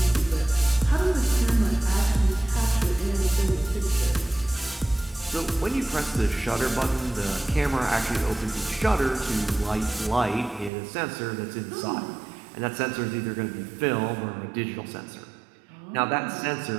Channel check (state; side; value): drops out; left; at 10.7 s